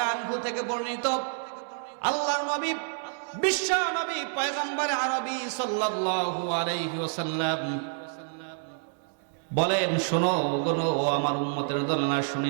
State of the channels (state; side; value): silent; left; digital silence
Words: আনহু থেকে বর্ণিত, আল্লাহর নবী, বিশ্ব নবী, পয়গম্বর আরবী সাল্লাল্লাহু আলাইহি ওয়াসাল্লাম বলেন, শোনো গোনো আমার উম্মতের দলনা,